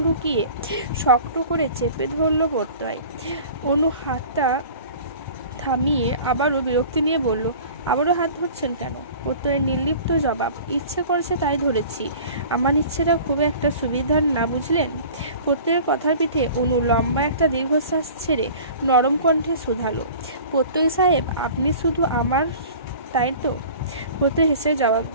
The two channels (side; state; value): both; inverted; correlation -0.43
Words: ঢুকিয়ে শক্ত করে চেপে ধরল প্রত্যয়। অনু হাতটা থামিয়ে আবারও বিরক্তি নিয়ে বলল, আবারও হাত ধরছেন কেন? প্রত্যয়ের নির্লিপ্ত জবাব, ইচ্ছে করছে তাই ধরেছি। আমার ইচ্ছেটা খুব একটা সুবিধার না, বুঝলেন? প্রত্যয়ের কথার পিঠে অনু লম্বা একটা দীর্ঘশ্বাস ছেড়ে নরম কণ্ঠে শুধালো, প্রত্যয় সাহেব আপনি শুধু আমার, তাই তো? প্রত্যয় হেসে জবাব